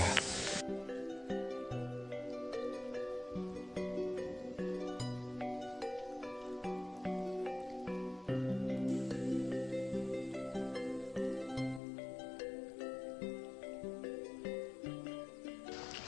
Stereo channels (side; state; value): right; drops out; at 11.8 s